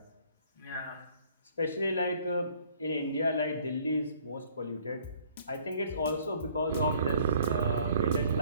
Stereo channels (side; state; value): both; inverted; correlation -0.58